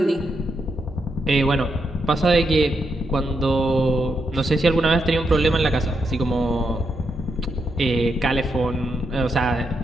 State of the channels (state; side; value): normal; both; correlation 0.82